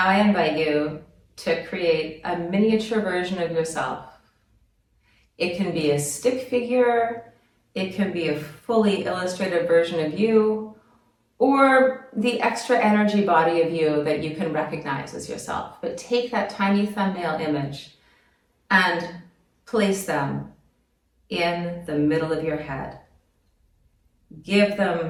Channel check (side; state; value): both; identical; correlation 1.00